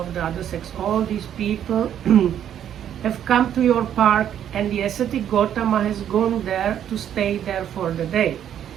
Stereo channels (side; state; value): left; quieter; 10.0 dB